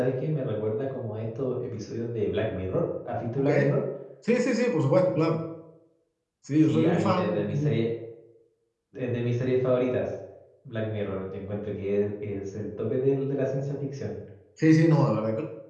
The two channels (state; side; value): identical; both; correlation 1.00